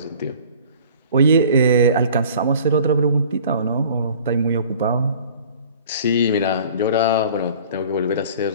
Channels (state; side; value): inverted; both; correlation -0.48